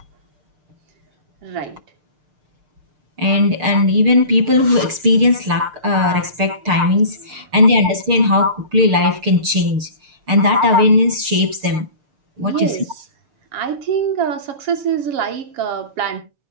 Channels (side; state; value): left; late; 6.6 ms